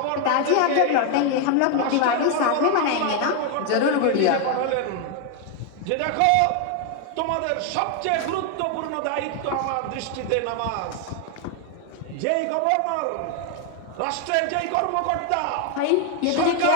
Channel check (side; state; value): both; different; correlation 0.01